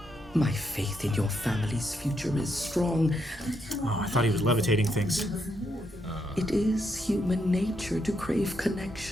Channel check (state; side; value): normal; both; correlation 0.79